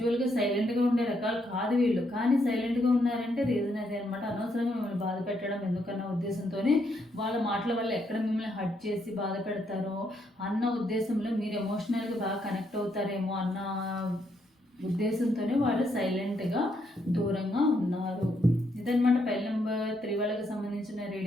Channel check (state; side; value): normal; both; correlation 0.76